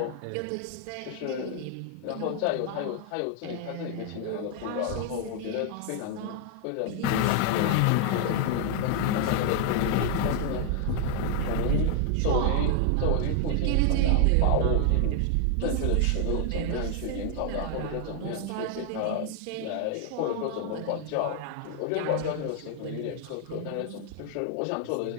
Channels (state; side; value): different; both; correlation 0.00